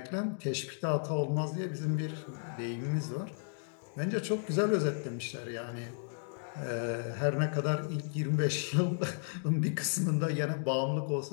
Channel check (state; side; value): silent; right; digital silence